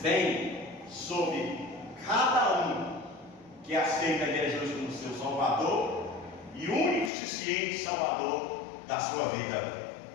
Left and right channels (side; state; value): right; drops out; at 7.1 s